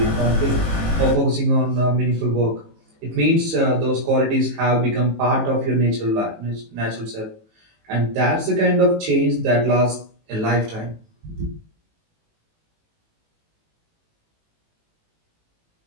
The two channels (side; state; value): left; late; 18 ms